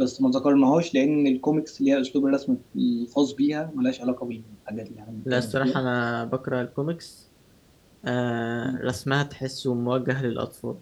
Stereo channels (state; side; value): identical; both; correlation 1.00